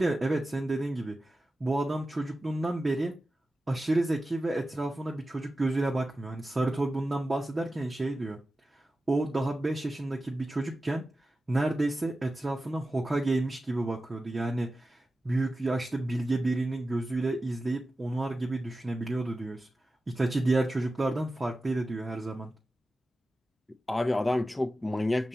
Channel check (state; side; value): normal; both; correlation 0.94